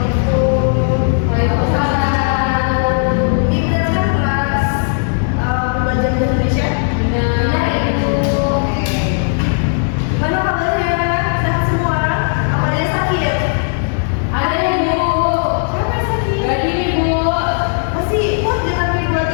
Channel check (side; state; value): right; silent; digital silence